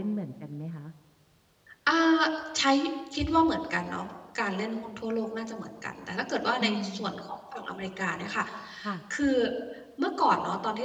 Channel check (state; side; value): identical; both; correlation 1.00